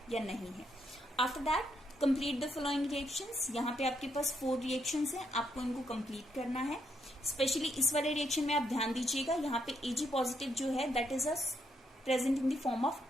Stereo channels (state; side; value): normal; both; correlation 0.76